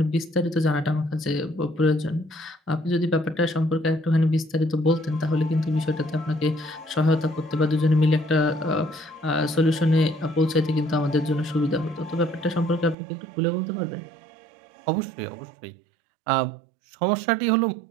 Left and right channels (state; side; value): drops out; left; at 13.0 s